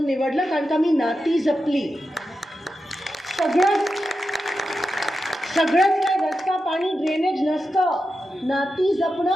निवडलं, कारण का मी नाती जपली। सगळंच काय रस्ता पाणी ड्रेनेज नसतं, नाती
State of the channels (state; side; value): normal; both; correlation 0.90